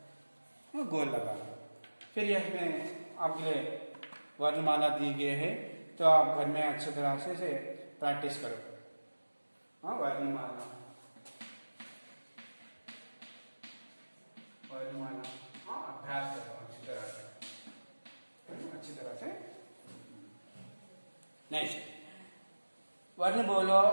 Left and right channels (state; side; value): inverted; both; correlation -1.00